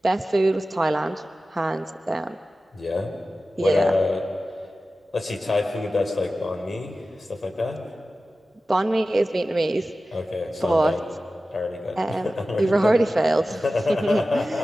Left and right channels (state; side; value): normal; both; correlation 0.95